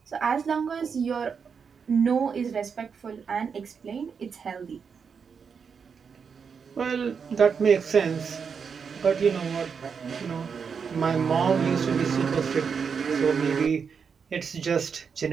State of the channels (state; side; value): quieter; left; 6.2 dB